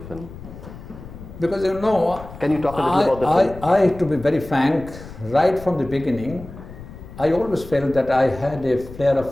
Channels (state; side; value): noise; left; rumble, 15 dB below the sound